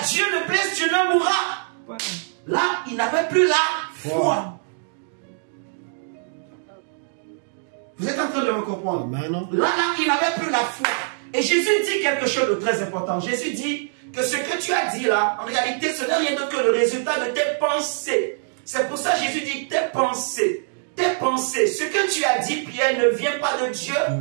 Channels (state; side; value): silent; left; digital silence